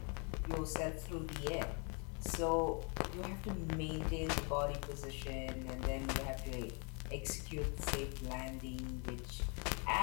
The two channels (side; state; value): right; quieter; 35.6 dB